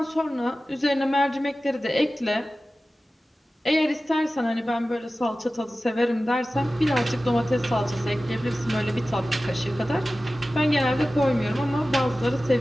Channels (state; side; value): normal; both; correlation 0.96